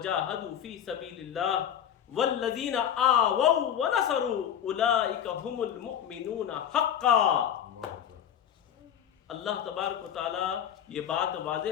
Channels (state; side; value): quieter; right; 9.5 dB